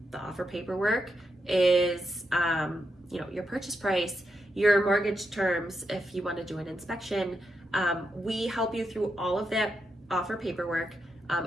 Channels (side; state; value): both; normal; correlation 0.84